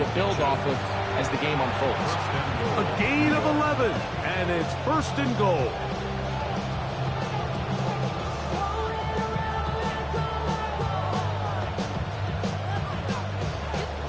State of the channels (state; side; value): identical; both; correlation 1.00